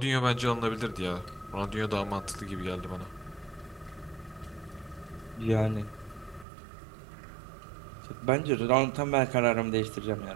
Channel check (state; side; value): drops out; left; at 6.5 s